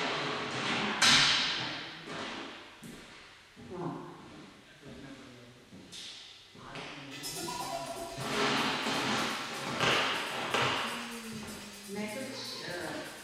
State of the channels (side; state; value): both; identical; correlation 1.00